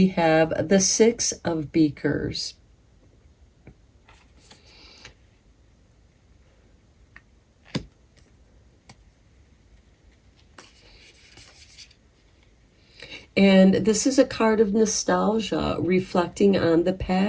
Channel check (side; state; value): both; identical; correlation 1.00